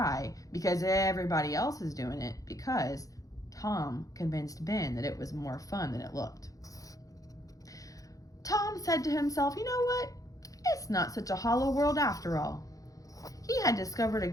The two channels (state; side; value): late; right; 0.17 ms